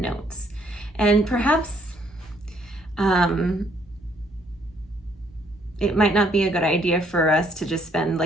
notes. And perhaps it might not be a good idea for us to just spend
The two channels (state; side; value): normal; both; correlation 0.67